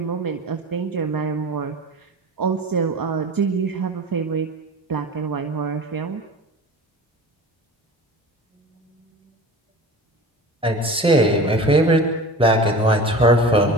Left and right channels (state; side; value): normal; both; correlation 0.36